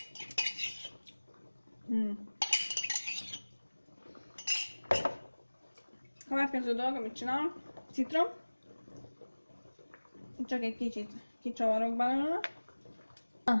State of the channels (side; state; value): both; inverted; correlation -1.00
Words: Következő dolog, amit csinálok, citrom. Csak egy kicsit kicsavarok belőle. A